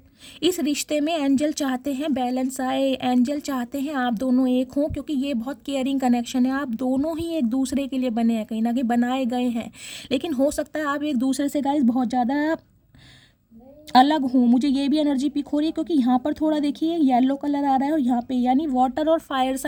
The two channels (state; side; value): identical; both; correlation 1.00